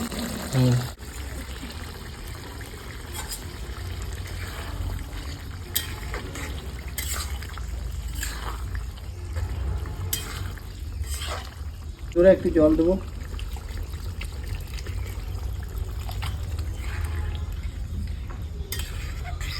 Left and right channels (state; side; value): identical; both; correlation 1.00